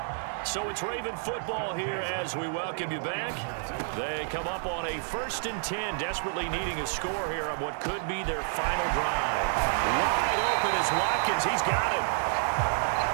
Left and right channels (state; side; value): silent; left; 58 dB below the other